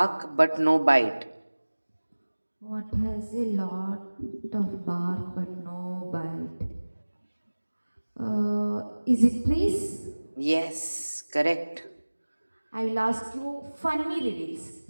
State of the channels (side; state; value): both; inverted; correlation -1.00